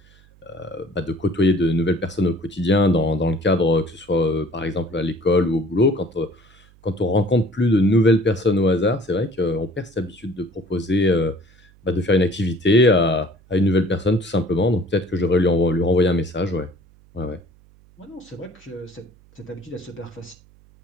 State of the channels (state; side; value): noise; right; hum, 28 dB below the sound